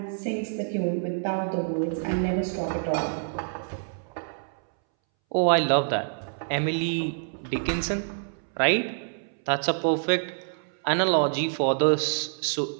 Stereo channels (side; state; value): left; silent; 60 dB below the other